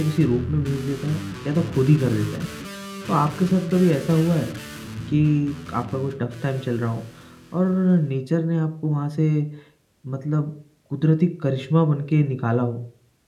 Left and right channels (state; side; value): identical; both; correlation 1.00